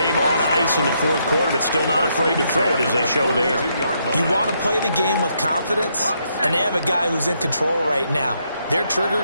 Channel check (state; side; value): inverted; both; correlation -0.76